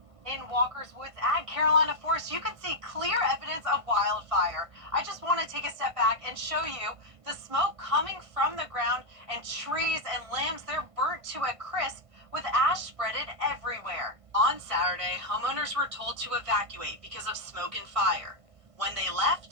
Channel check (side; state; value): left; late; 1.5 ms